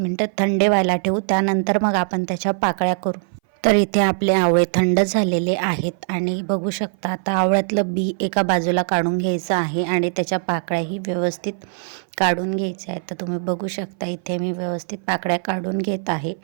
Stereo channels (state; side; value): silent; left; 60 dB below the other